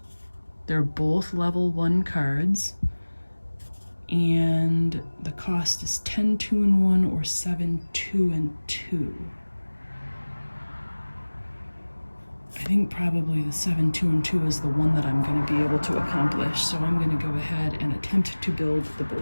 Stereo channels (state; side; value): inverted; both; correlation -1.00